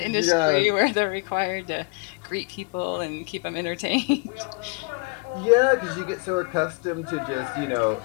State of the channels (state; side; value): quieter; right; 30.6 dB